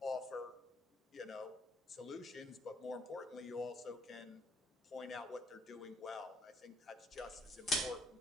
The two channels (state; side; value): normal; both; correlation 0.67